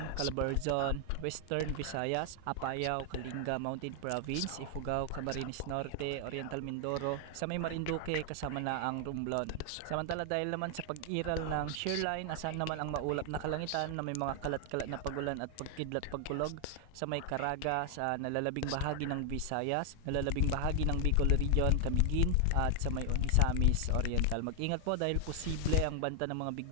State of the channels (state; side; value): different; both; correlation 0.00